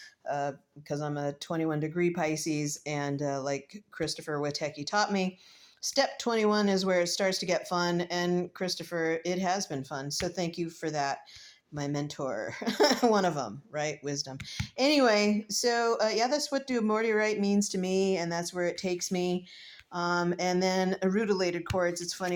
because I'm a 21 degree Pisces, and like Christopher Witecki taught me, step 21 is where it starts to get fun. And Christopher, it has been fun. So thank you for that, my mentor. One of them, right? Wisdom. Anyway, so yeah, that's what do Morty right means to me, and that's where it takes me. And then rutilated chords. It's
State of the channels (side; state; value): both; identical; correlation 1.00